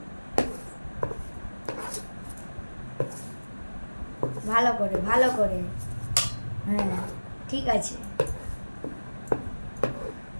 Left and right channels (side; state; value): both; inverted; correlation -1.00